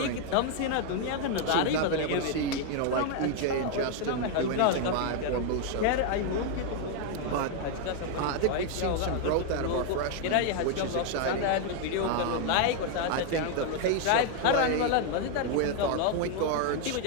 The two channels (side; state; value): both; different; correlation 0.00